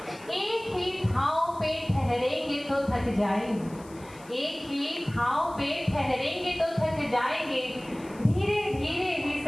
एक ही ठाव पे ठहरेंगे तो थक जाएंगे, एक ही ठाव पे ठहरेंगे तो थक जाएंगे, धीरे धीरे ही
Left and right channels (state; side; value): noise; left; hiss, 23 dB below the sound